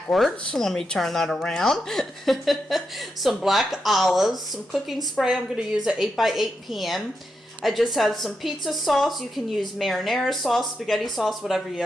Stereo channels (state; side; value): normal; both; correlation 0.85